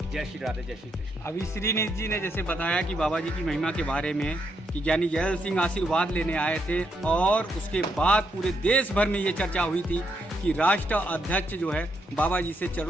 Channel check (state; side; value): normal; both; correlation 0.78